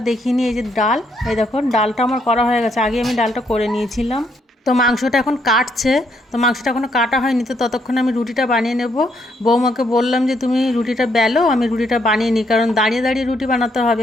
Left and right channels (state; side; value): normal; both; correlation 0.73